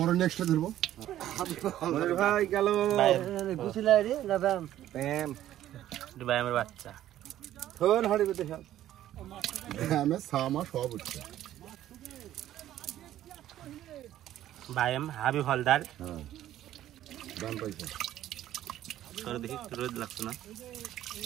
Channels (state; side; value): quieter; left; 12.8 dB